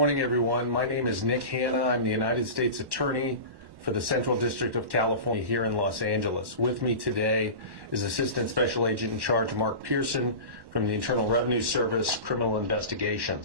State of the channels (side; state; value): left; late; 1.1 ms